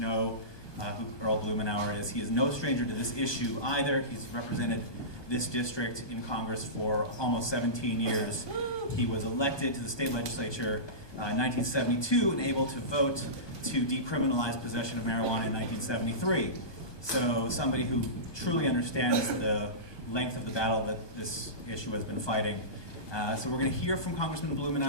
who Earl Blumenauer is. He is no stranger to this issue either. He's represented this district in Congress for almost 17 years. He was elected to the state legislature in 1972 and able to vote to decriminalize possession of marijuana in 1973. So somebody who truly understands the length of the battle that this issue has been fighting. So we're going to hear from Congressman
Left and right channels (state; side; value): late; right; 1.2 ms